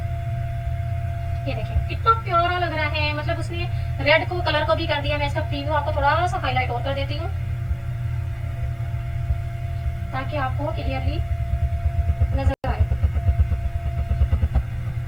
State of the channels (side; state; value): both; identical; correlation 1.00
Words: ये देखिए कितना प्यारा लग रहा है, मतलब उसने रेड को कलर को भी कर दिया। मैं इसका प्रीव्यू आपको थोड़ा सा हाईलाइट और कर देती हूँ ताकि आपको क्लियरली नजर आए।